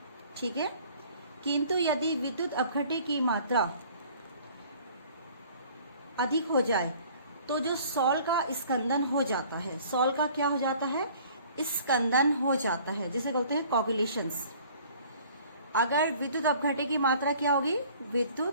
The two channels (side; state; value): both; inverted; correlation -0.53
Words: ठीक है, किंतु यदि विद्युत अपघटे की मात्रा अधिक हो जाए तो जो सॉल का स्कंदन हो जाता है, सॉल का क्या हो जाता है? स्कंदन हो जाता है, जिसे कहते हैं कोगुलेशंस। अगर विद्युत अपघटे की मात्रा क्या होगी?